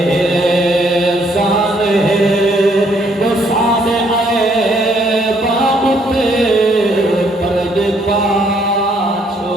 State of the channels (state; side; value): normal; both; correlation 0.68